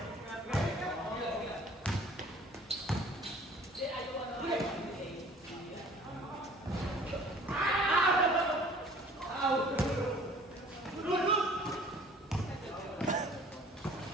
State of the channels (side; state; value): both; normal; correlation 0.51